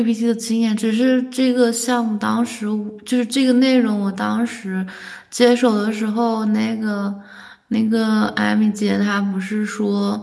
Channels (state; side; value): identical; both; correlation 1.00